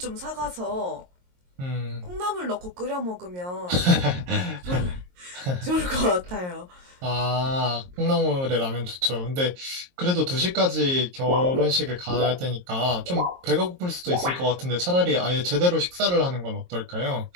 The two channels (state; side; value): late; left; 22 ms